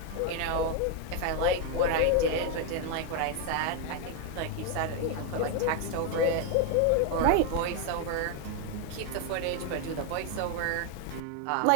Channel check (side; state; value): both; different; correlation 0.01